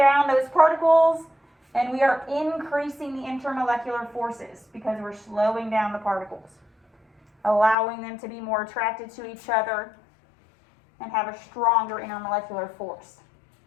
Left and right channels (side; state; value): right; drops out; at 7.8 s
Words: those particles, and we are increasing the intermolecular forces because we're slowing down the particles, allowing them to be more attracted to each other and have a stronger intermolecular force.